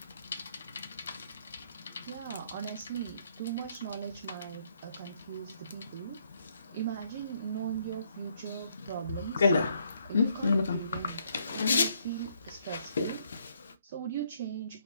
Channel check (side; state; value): both; inverted; correlation -0.70